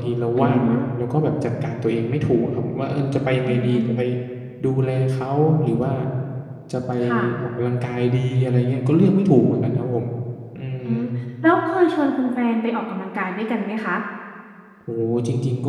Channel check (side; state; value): both; identical; correlation 1.00